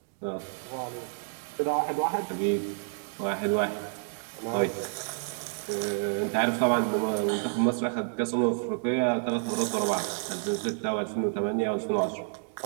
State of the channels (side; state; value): left; silent; 58 dB below the other